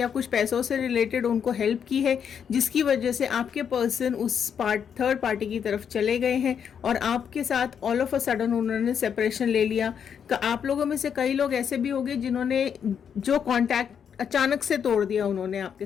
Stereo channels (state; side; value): quieter; right; 7.7 dB